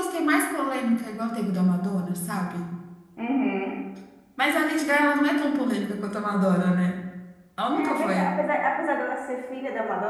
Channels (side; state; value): both; identical; correlation 1.00